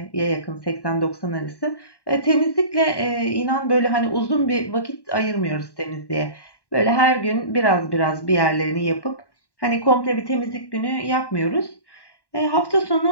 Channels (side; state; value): right; late; 1.1 ms